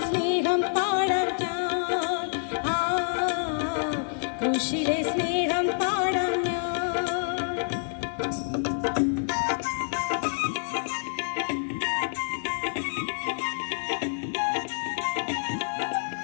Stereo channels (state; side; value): silent; right; 60 dB below the other